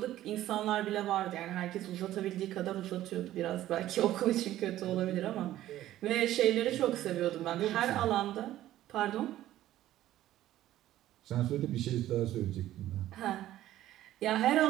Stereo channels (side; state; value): left; quieter; 13.8 dB